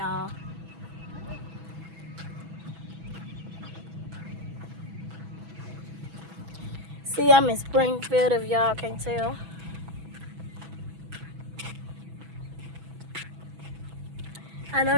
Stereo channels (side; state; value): left; late; 6.1 ms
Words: See, I'm in Springfield, if y'all can't tell. I